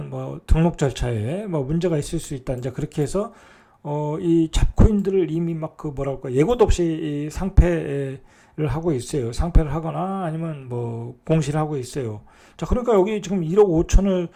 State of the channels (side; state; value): both; identical; correlation 1.00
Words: 등록 절차에 문제가 있을 수 있다. 이제 그렇게 해서 이 잡코인들을 이미 예고도 없이 상패를 하고 있어요. 상패를 하거나 아니면 공시를 하고 있어요. 자, 그러니까 여기 지금 1억 5천을